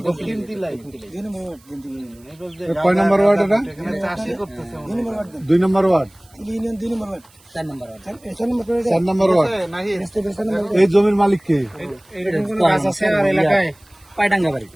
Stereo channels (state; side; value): noise; right; hiss, 29 dB below the sound